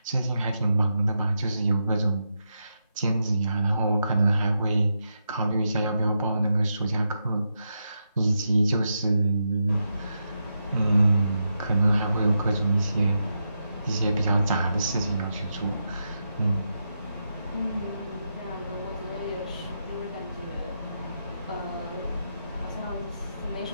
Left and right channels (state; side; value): inverted; both; correlation -0.85